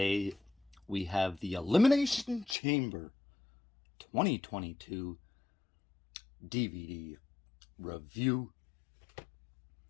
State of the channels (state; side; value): drops out; right; at 2.6 s